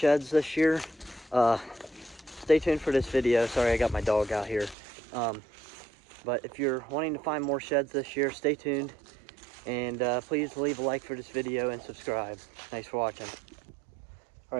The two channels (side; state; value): left; drops out; at 4.8 s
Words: this year, stay tuned for this video. Sorry, I got my dog out here. But if you're wanting to find more sheds this year, stay tuned. And please leave a like for this video and subscribe. Thanks for watching. All